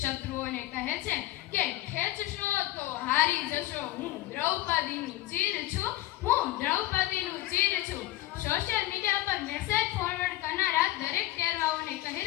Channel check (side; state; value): right; quieter; 16.1 dB